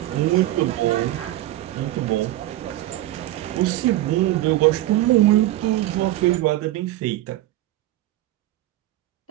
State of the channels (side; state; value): left; quieter; 15.4 dB